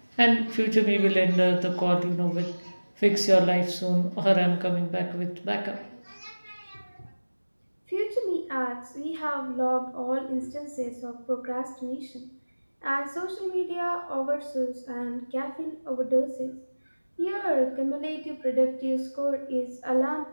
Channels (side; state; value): both; inverted; correlation -1.00